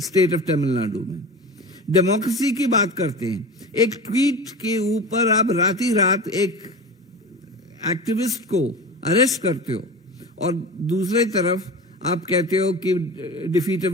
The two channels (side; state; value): both; normal; correlation 0.31